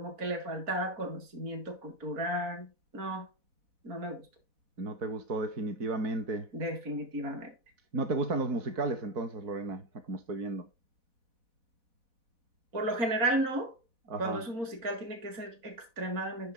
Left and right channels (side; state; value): left; late; 4.1 ms